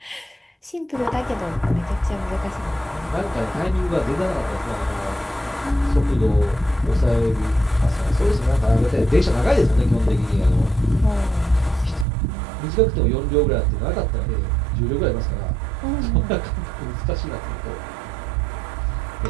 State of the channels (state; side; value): drops out; left; at 12.1 s